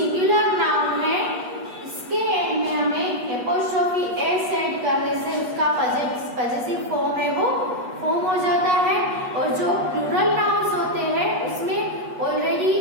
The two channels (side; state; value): left; late; 8.2 ms